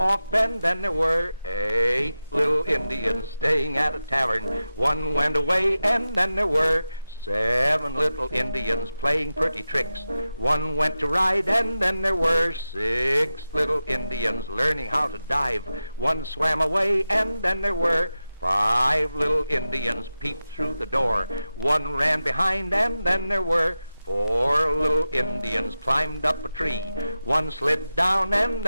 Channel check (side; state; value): both; inverted; correlation -0.93